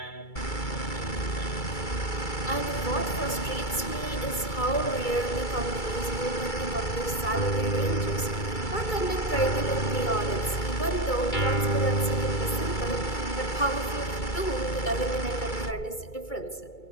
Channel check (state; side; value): late; right; 2.3 ms